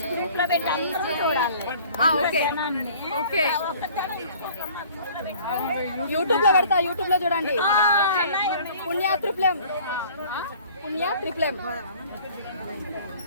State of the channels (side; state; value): both; inverted; correlation -0.51